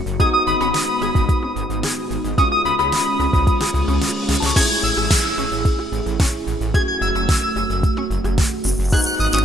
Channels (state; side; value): normal; both; correlation 0.72